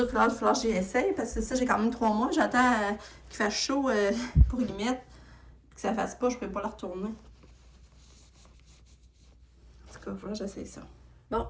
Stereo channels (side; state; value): both; identical; correlation 1.00